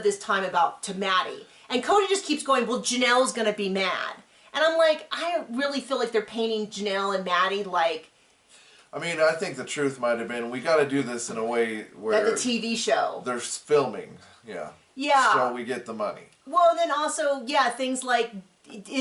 this time to Maddie. And Kody just keeps going, well, Janelle's going to be mad. And I'm like, I really feel like they're painting Janelle and Maddie like... I mean, I think the truth might have been, we got to do this in a way where... Like a TV show. They're filming, yeah. Yeah. So we get the money. Well, and then also, yeah, things like...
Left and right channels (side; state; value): both; identical; correlation 1.00